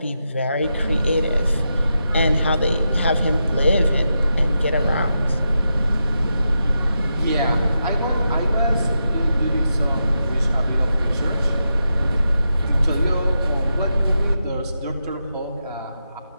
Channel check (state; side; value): inverted; both; correlation -0.87